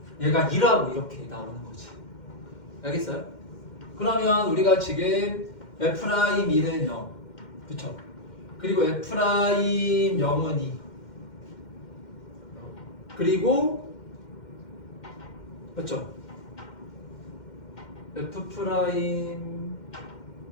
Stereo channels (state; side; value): late; right; 2.1 ms